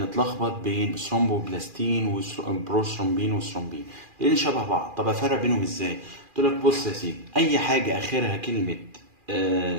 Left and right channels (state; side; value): late; left; 2.4 ms